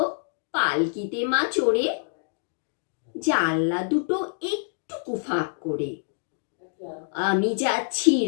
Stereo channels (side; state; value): right; silent; digital silence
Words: পালকিতে মা চড়ে, জানলা দুটো একটু ফাঁক করে। আমি যাচ্ছি